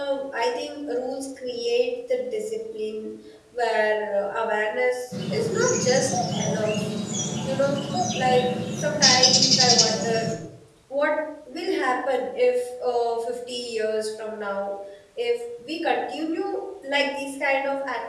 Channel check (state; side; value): identical; both; correlation 1.00